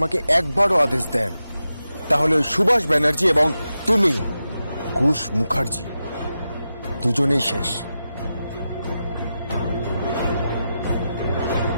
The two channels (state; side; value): inverted; both; correlation -0.90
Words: একবারও আদেশ দেন তাহলে ওই সুভাষ ব্যানার্জি এবং তুমি কুশ মুখার্জি দুজনেই শেষ।